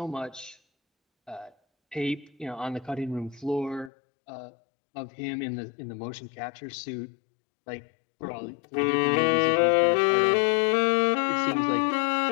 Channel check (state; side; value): drops out; right; at 3.9 s